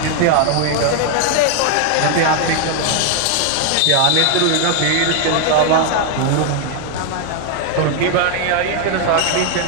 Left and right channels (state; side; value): different; both; correlation 0.00